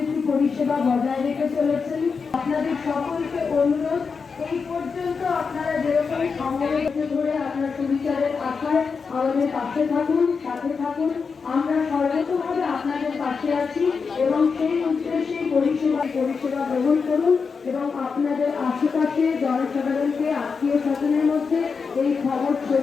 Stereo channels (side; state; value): right; quieter; 5.3 dB